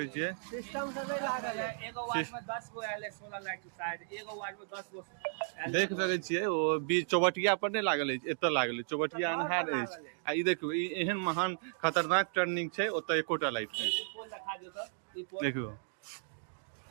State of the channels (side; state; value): left; silent; digital silence